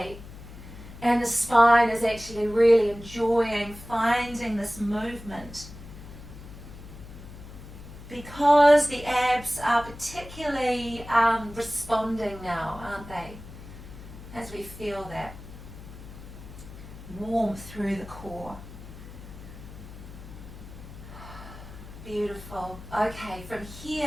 and the spine is actually really enjoying finding this movement, because the abs are particularly responding now, aren't they? As we feel that warmth through the core. Beautiful. Okay, from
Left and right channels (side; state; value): left; noise; hum, 15 dB below the sound